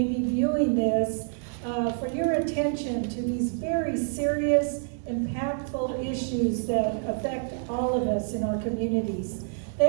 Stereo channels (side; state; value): left; silent; digital silence